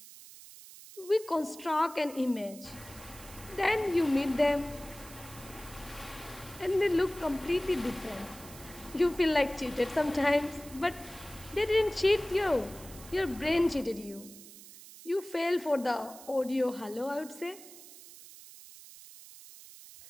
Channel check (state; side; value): noise; right; hiss, 17 dB below the sound